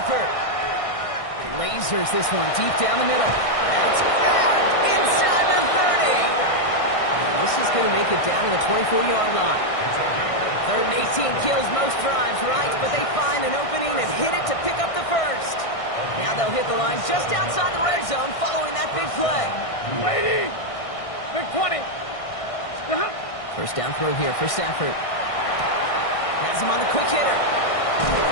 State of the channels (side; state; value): right; late; 1.6 ms